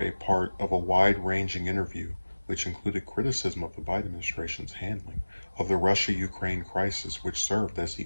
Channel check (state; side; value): inverted; both; correlation -1.00